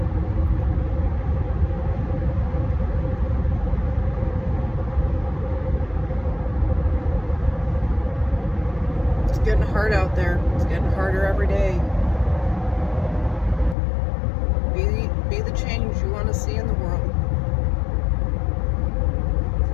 It's getting hard out there. It's getting harder every day. Be the change you want to see in the world.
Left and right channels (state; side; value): drops out; right; at 13.8 s